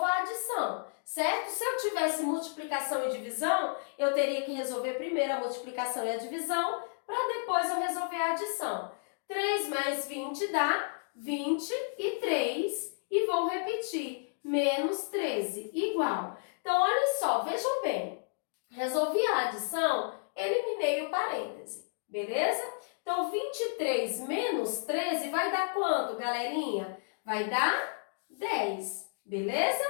a adição, certo? Se eu tivesse multiplicação e divisão, eu teria que resolver primeiro a multiplicação e a divisão, para depois eu resolver a adição. 3 mais 20 dá 23, e vou repetir, menos 13, igual. Então, olha só, vejam bem, resolvi a adição, eliminei o parêntese, beleza? Então, 23 menos 13 vai dar quanto, galerinha? Vai dar 10, beleza?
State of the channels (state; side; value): silent; right; digital silence